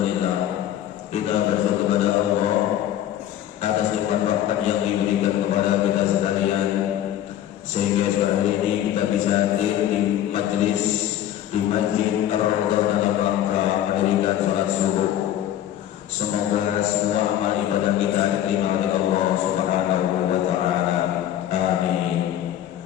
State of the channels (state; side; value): quieter; right; 11.7 dB